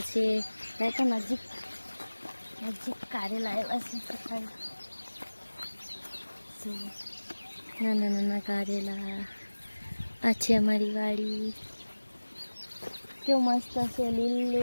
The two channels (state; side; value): inverted; both; correlation -1.00